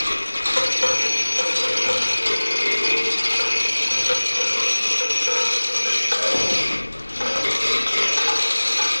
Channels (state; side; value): inverted; both; correlation -1.00